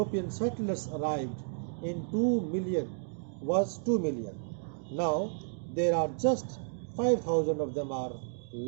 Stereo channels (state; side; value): silent; left; digital silence